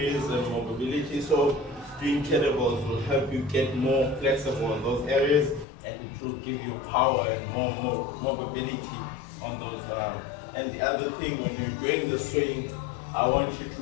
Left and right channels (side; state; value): right; drops out; at 5.7 s